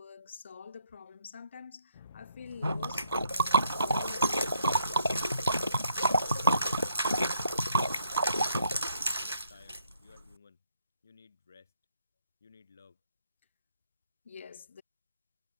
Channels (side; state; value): both; inverted; correlation -0.72